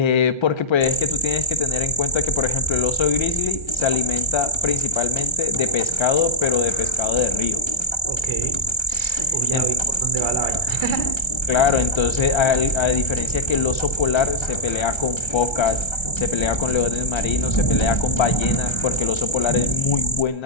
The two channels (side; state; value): right; late; 1.3 ms